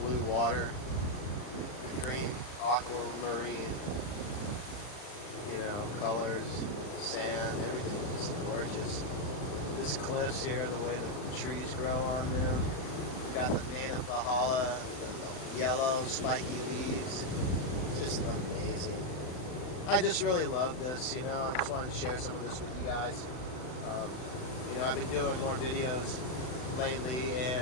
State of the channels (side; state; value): right; late; 39 ms